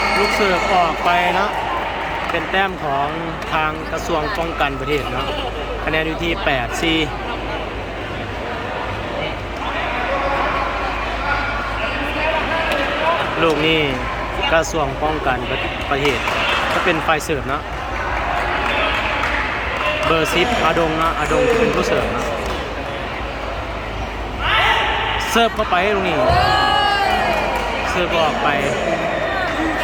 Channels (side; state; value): both; identical; correlation 1.00